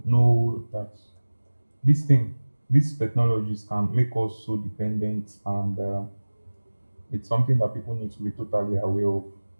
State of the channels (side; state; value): both; inverted; correlation -1.00